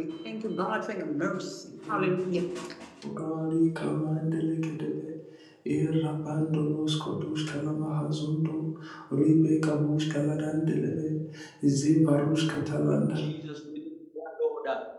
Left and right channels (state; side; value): identical; both; correlation 1.00